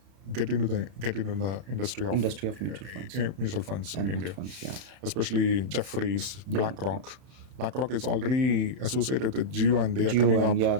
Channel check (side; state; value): left; late; 31 ms